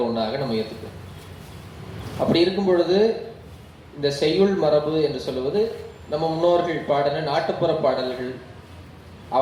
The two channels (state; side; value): identical; both; correlation 1.00